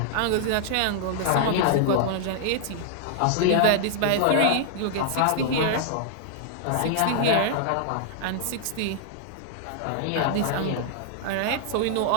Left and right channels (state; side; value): different; both; correlation -0.01